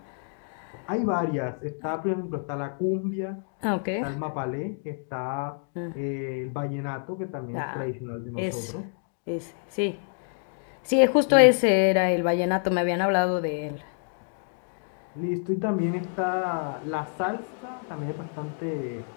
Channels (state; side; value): silent; right; 59 dB below the other